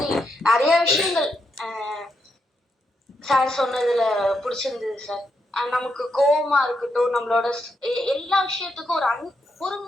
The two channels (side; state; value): both; normal; correlation 0.81